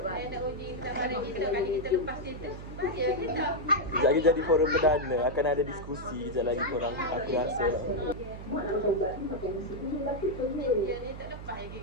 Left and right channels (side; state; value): right; noise; hum, 11 dB below the sound